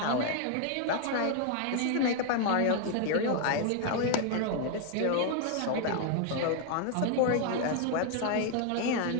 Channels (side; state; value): both; different; correlation 0.00